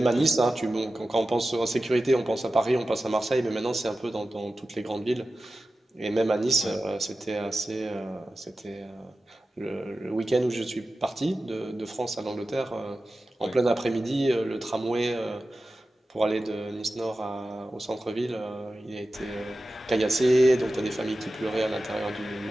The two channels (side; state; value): both; normal; correlation 0.94